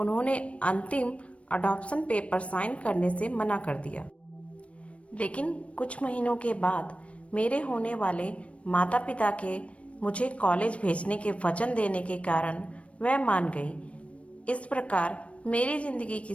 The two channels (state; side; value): late; right; 0.063 ms